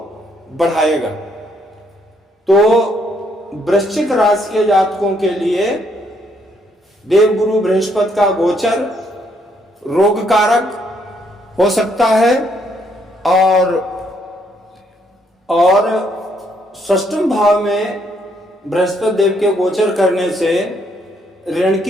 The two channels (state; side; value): normal; both; correlation 0.71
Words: बढ़ाएगा। तो वृश्चिक राशि के जातकों के लिए देवगुरु बृहस्पति का गोचर रोग कारक हो सकता है। और षष्ठम भाव में बृहस्पति देव के गोचर करने से ऋण